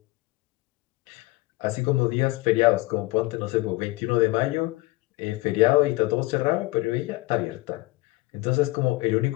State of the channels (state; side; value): quieter; right; 21.5 dB